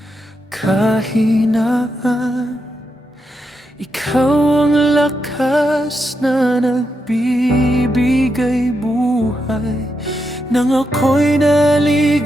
kahinaan, ikaw ang lakas na nagbibigay buhay. Nang ako'y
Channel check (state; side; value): normal; both; correlation 0.84